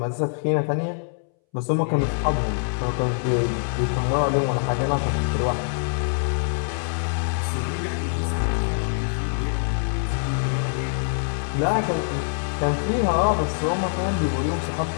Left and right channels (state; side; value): silent; right; 62 dB below the other